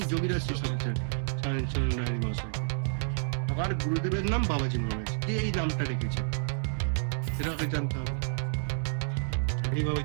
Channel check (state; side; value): silent; left; digital silence